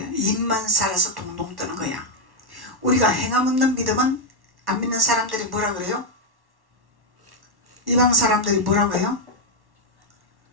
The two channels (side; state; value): left; late; 1.1 ms